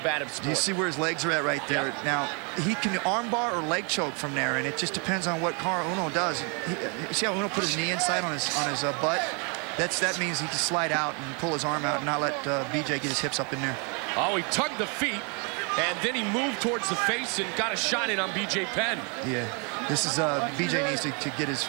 sport. Do you see where his legs are at right there? Yep. Now, he can armbar or leg choke from there, and it just depends on what Caol Uno does. You see how Uno put his knee inside on his butt? That means he can slide out and pull his arm out and not let BJ get his hips up in there. Oh, he tugged the feet, and then he moved towards the face and got a shot in on BJ Penn. Yeah, this is BJ needs to get his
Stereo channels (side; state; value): left; quieter; 35.2 dB